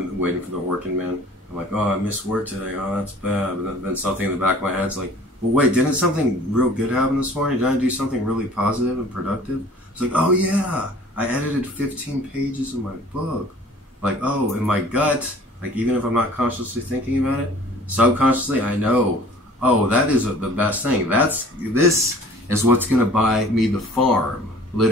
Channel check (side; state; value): both; normal; correlation 0.49